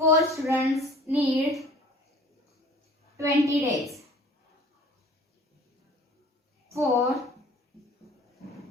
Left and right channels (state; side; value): normal; both; correlation 0.48